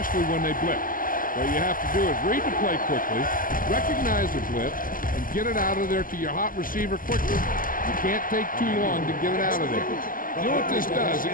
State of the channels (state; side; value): late; right; 0.41 ms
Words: when they blitz. What you have to do is read the play quickly, recognize the blitz, and get it out of there to your hot receiver quickly. You can't take too long to get it out of there. You know what this does? It